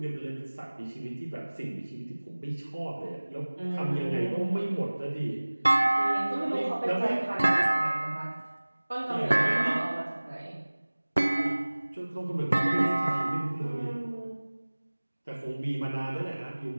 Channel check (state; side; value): inverted; both; correlation -1.00